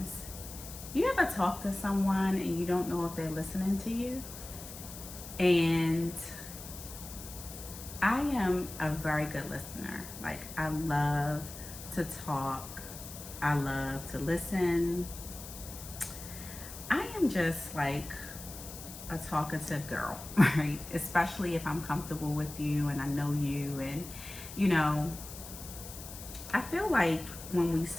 You ever talk to someone and you don't know if they're listening to you? And I am a very good listener. Like, I love to talk, I love to listen. I am just like a talkative girl, right? Especially if I'm comfortable with you and I know you. And, you know, I feel like when we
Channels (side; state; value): left; noise; hiss, 13 dB below the sound